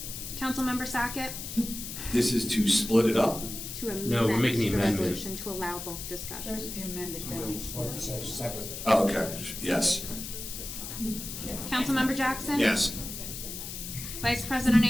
Councilmember Sackett? This is to split it up? To amend No, we're making the amendment. resolution to allow both discussions. Oh, okay, yes. Councilmember Jackson? Yes. Vice President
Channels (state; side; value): noise; left; hiss, 8 dB below the sound